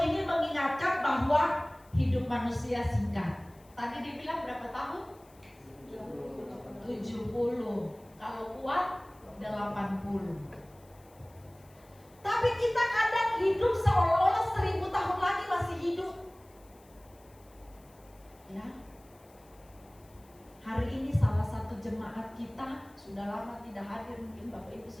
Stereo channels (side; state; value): left; noise; hiss, 28 dB below the sound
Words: ini mengingatkan bahwa hidup manusia singkat. Tadi dibilang berapa tahun? 70. Kalau kuat 80. Tapi kita kadang hidup seolah-olah 1000 tahun lagi masih hidup. Ya. Hari ini salah satu jemaat kita sudah lama tidak hadir, mungkin Bapak Ibu